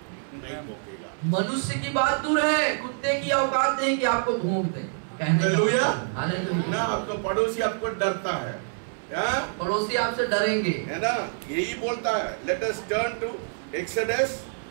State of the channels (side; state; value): left; silent; 61 dB below the other